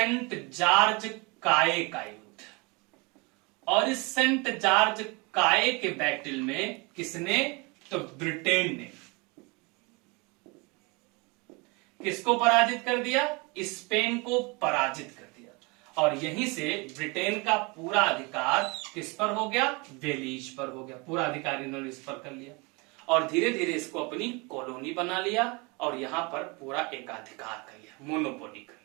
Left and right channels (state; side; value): quieter; left; 28.1 dB